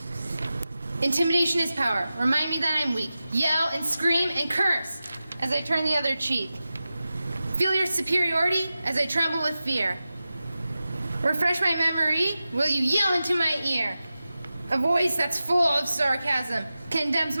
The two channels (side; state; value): both; inverted; correlation -0.94